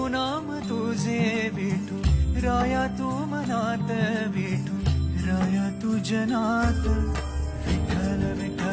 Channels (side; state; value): both; identical; correlation 1.00